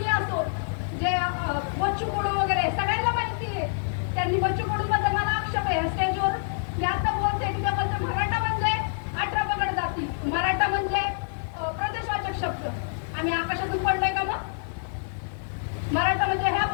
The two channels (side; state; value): right; silent; digital silence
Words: असो, जे बच्चू कडू वगैरे सगळ्यांना माहिती आहे. त्यांनी बच्चू कडू बद्दल मला आक्षेप आहे स्टेजवर. मी आता बोलते की त्याबद्दल मराठा म्हणजे 18 पगड जाती, मराठा म्हणजे प्रदेशवाचक शब्द. आम्ही आकाशातून पडलोय का मग? मराठा म्हणजे ह्या